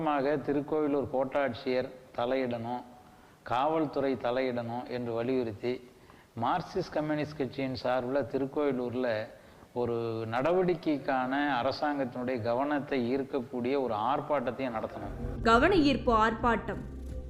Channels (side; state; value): both; identical; correlation 1.00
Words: திருக்கோவிலூர் கோட்டாட்சியர் தலையிடணும், காவல்துறை தலையிடணும் என்று வலியுறுத்தி மார்க்சிஸ்ட் கம்யூனிஸ்ட் கட்சியின் சார்பில் திருக்கோவிலூரில் ஒரு நடவடிக்கைக்கான அரசாங்கத்தினுடைய கவனத்தை ஈர்க்கக்கூடிய ஒரு ஆர்ப்பாட்டத்தையும் நடத்தணும். கவன ஈர்ப்பு ஆர்ப்பாட்டம்